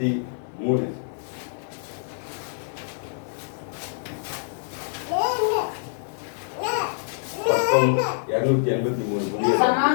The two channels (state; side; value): silent; right; digital silence